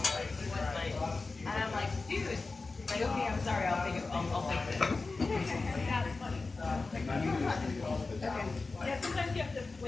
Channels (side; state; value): right; quieter; 3.8 dB